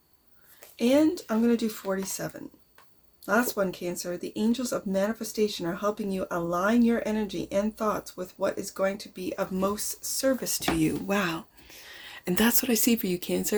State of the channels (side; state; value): both; identical; correlation 1.00